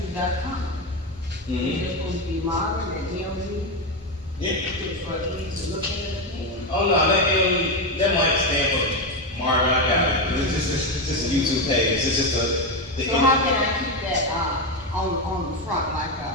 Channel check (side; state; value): both; normal; correlation 0.11